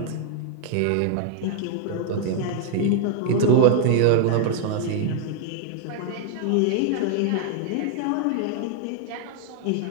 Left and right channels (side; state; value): both; different; correlation 0.00